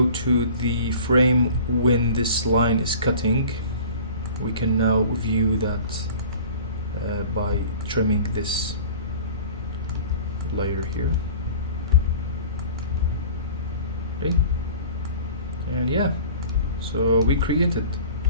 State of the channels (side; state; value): both; inverted; correlation -0.42